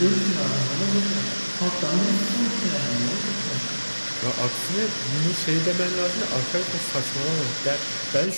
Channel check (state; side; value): inverted; both; correlation -1.00